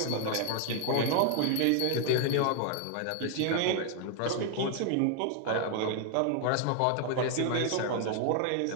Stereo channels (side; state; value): both; different; correlation 0.00